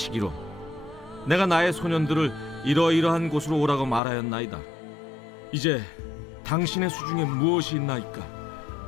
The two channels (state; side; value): drops out; right; at 4.0 s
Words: 내가 나의 소년들을 이러이러한 곳으로 오라고 말하였나이다. 이제 당신의 수중에 무엇이 있나이까?